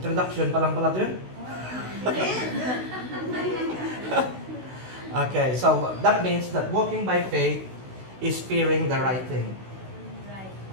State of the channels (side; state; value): left; late; 16 ms